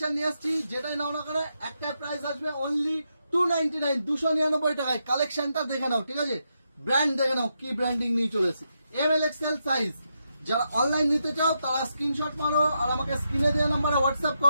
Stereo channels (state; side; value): inverted; both; correlation -0.83